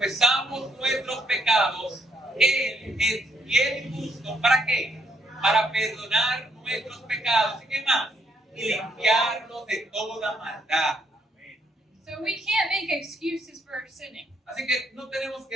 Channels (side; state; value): both; normal; correlation 0.72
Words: nuestros pecados, Él es fiel y justo. ¿Para qué? Para perdonar nuestros pecados. ¿Y qué más? Y limpiarlos de toda maldad. Amén. so we can't make excuses for sinning. Así que no tenemos